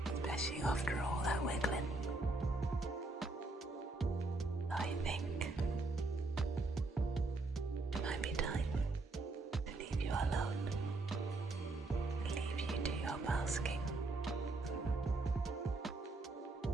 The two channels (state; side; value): quieter; left; 3.1 dB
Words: Especially after all that wiggling. I think it might be time to leave you alone. Leave you to your basking.